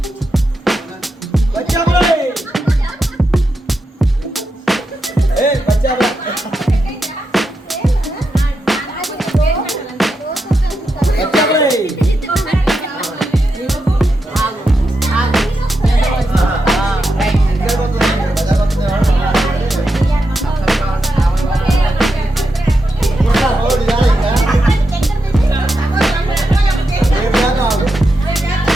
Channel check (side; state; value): both; normal; correlation 0.86